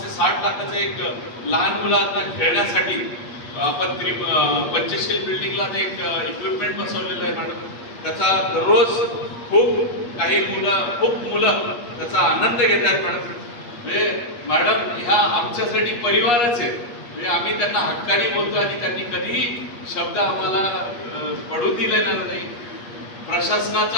ते 60 लाखाचं एक लहान मुलांना खेळण्यासाठी आपण पंचशील बिल्डिंगला ते एक इक्विपमेंट बसवलेलं आहे मॅडम. त्याचा दररोज खूप मुलं त्याचा आनंद घेत आहेत मॅडम. म्हणजे मॅडम ह्या आमच्यासाठी परिवारच आहे. म्हणजे आम्ही त्यांना हक्काने बोलतो आणि त्यांनी कधीही शब्द आम्हाला पडू दिलेला नाही.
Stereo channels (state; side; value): late; right; 8.4 ms